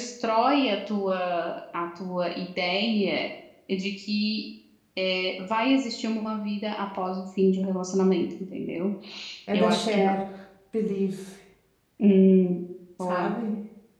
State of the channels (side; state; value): both; identical; correlation 1.00